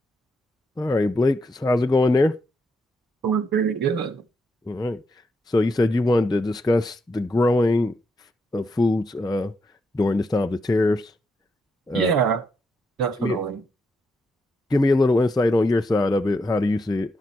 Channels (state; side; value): normal; both; correlation 0.81